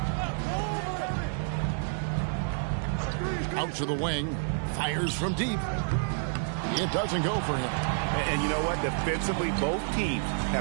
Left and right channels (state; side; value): silent; left; digital silence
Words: Out to the wing. Fires from deep. It doesn't go for him. And you know what? Defensively, both teams